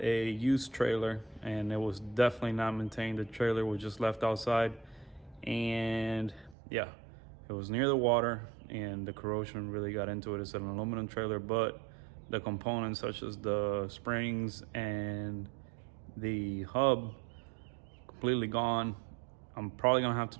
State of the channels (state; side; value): drops out; left; at 6.6 s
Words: used trailer, and it was definitely not maintained. The trailer was just left outside, and yeah, it was near the water, and the corrosion really got into it. It's an aluminum trailer, but the components such as the springs and the hub completely gone. I'm probably gonna have to